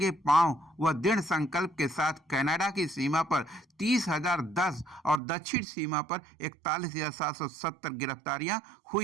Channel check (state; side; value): drops out; left; at 5.2 s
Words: पांव व दृढ़ संकल्प के साथ कनाडा की सीमा पर 30,010 और दक्षिण सीमा पर 41,770 गिरफ्तारियां